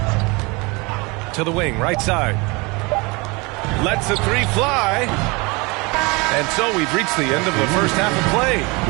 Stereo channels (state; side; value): quieter; left; 26.8 dB